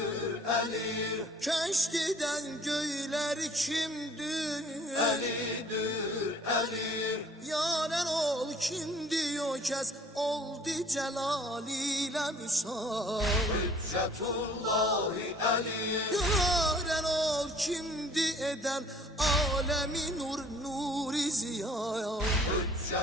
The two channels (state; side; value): normal; both; correlation 0.54